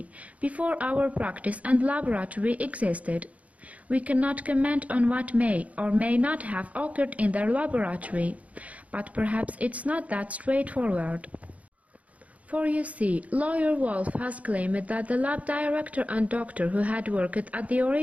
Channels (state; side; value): late; left; 0.068 ms